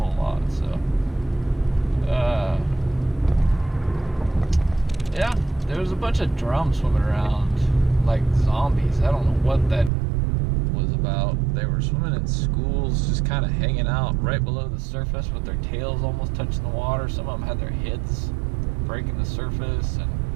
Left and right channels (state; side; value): drops out; left; at 9.9 s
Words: lot. So yeah, there was a bunch of drums swimming around like zombies. I don't know what that was about. They were swimming in schools, just kind of hanging out right below the surface with their tails almost touching the water. Some of them had their heads breaking the surface, and